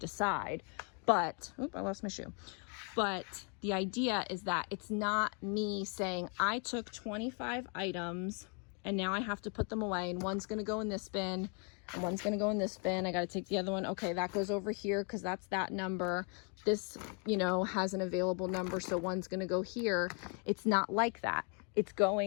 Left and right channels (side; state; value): right; quieter; 38.1 dB